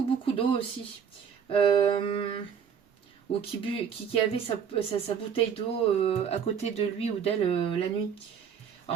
beaucoup d'eau aussi. Ou qui avait sa bouteille d'eau à côté de lui ou d'elle la nuit.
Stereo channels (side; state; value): left; quieter; 7.4 dB